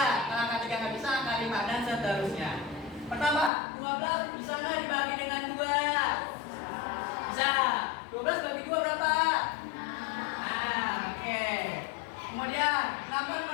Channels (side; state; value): right; drops out; at 3.5 s